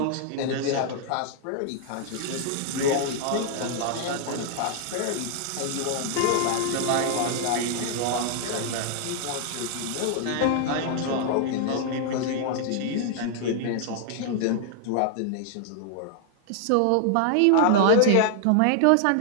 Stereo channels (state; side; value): different; both; correlation 0.00